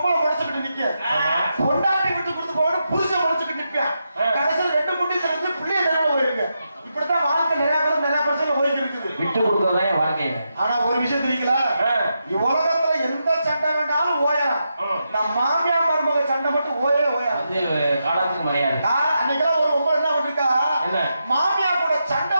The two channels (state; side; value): inverted; both; correlation -0.85